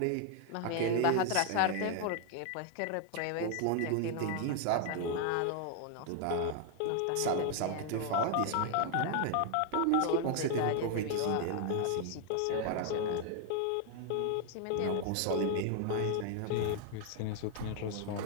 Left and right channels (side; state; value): both; different; correlation 0.00